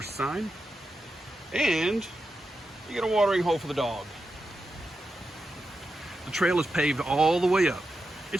sign. And you get a watering hole for the dog. The trail is paved all the way up.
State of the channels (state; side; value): normal; both; correlation 0.89